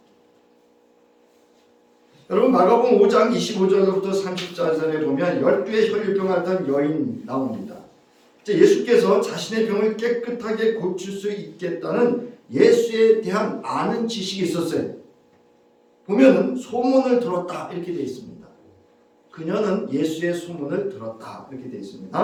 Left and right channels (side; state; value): both; identical; correlation 1.00